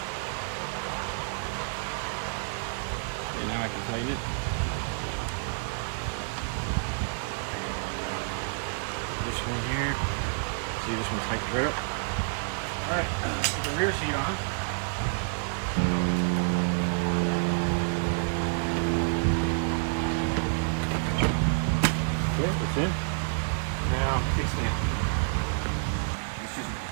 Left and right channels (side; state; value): left; silent; 59 dB below the other